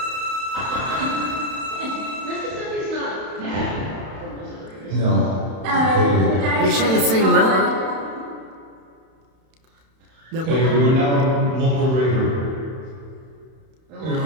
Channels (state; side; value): late; left; 31 ms